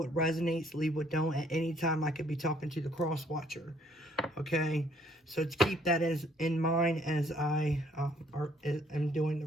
resonates, leave what don't. At any time, I could be talking to the cross watcher. Okay? So to keep that in mind as I am doing the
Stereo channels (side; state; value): both; normal; correlation 0.64